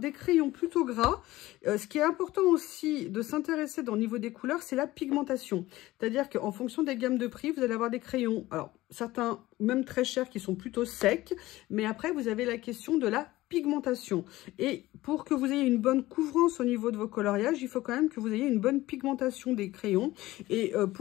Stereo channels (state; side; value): quieter; right; 17.4 dB